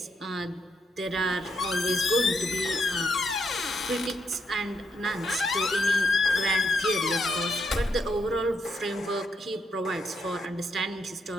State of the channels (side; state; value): both; normal; correlation 0.79